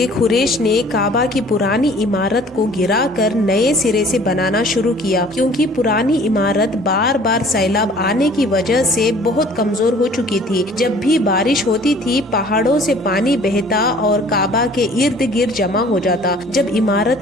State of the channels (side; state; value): both; normal; correlation 0.52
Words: قریش نے کعبہ کی پرانی عمارت کو گرا کر نئے سرے سے بنانا شروع کیا، کیونکہ پرانی عمارت بار بار سیلاب آنے کی وجہ سے بہت کمزور ہو چکی تھی۔ جب بھی بارش ہوتی تھی پہاڑوں سے پانی بہتا اور کعبہ کے ارد گرد جمع ہو جاتا۔ جب